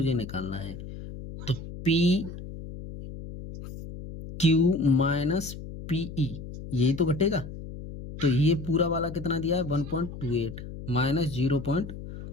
निकालना है, तो पी क्यू माइनस पीई यही तो घटेगा। तो ये पूरा वाला कितना दिया है 1.28 माइनस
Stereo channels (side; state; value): left; noise; hum, 11 dB below the sound